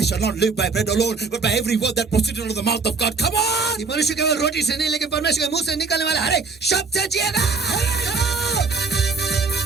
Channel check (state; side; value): quieter; left; 4.4 dB